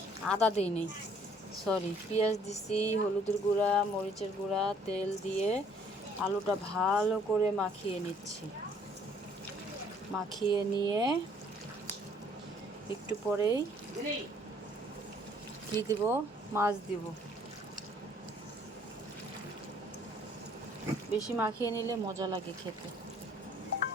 আদা দিই নেই, সরি, পেঁয়াজ দিছি, হলুদের গুঁড়া, মরিচের গুঁড়া, তেল দিয়ে আলুটা ভালো করে মাখিয়ে নিচ্ছি। মাখিয়ে নিয়ে একটু পরেই কি দিব, মাছ দিব। বেশি মাখিয়ে নিলে মজা লাগে খেতে।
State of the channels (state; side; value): normal; both; correlation 0.60